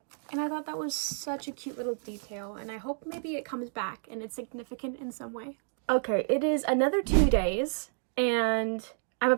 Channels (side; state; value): left; silent; 57 dB below the other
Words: And I thought that was such a cute little detail, and I hope maybe it comes back and it's significant in some way. Okay, it is another 2 days, and I'm